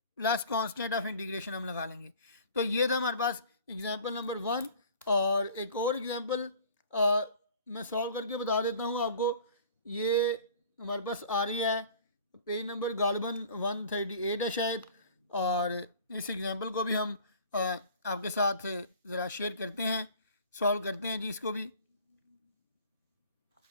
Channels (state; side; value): inverted; both; correlation -0.47